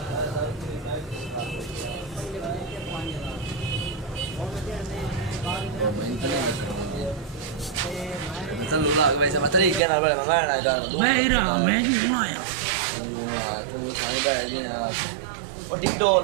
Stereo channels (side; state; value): left; drops out; at 9.8 s